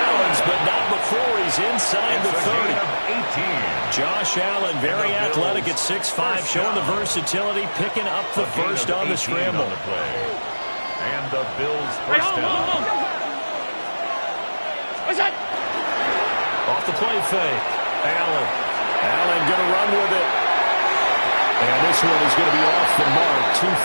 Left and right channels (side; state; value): both; inverted; correlation -1.00